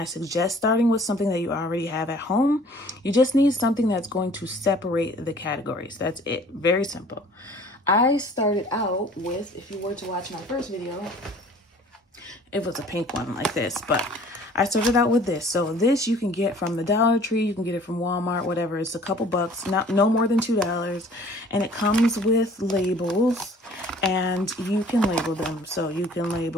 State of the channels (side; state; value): both; normal; correlation 0.52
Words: suggest starting with something that you already have at home. You just need something that's going to separate the categories. That's it. Very simple. I started out with, if you were to watch my first video, it was a pink one like this, but I started out with this. So this you can get from the Dollar Tree, you can get it from Walmart, whatever. It's a couple bucks, no more than $2. And it comes with labels, and you can label them. So you can